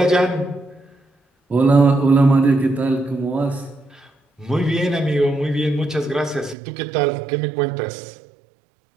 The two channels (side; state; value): left; drops out; at 6.6 s